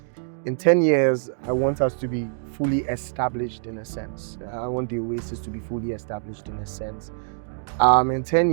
In 10 years, I want us to be fully established in a sense. I want the Oasis to be fully established in a sense. In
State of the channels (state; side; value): silent; left; digital silence